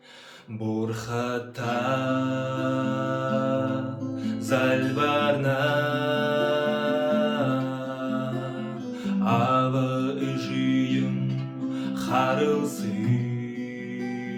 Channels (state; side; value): identical; both; correlation 1.00